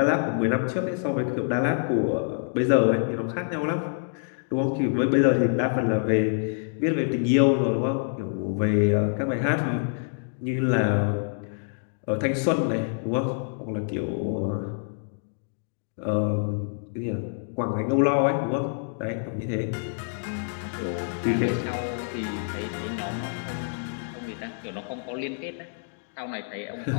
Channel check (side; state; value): right; silent; digital silence